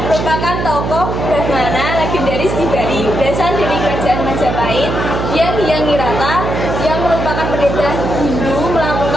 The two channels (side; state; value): right; noise; hum, 3 dB below the sound